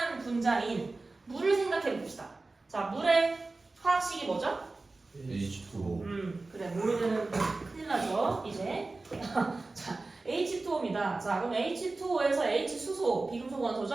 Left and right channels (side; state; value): left; quieter; 3.4 dB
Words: 분자인 물을 생각해 봅시다. 자, 물의 화학식이 뭐죠? H2O. 그래, 모르면 큰일 나죠, 이제. 자, H2O입니다. 자, 그럼 H2O에서 H수소, 비금속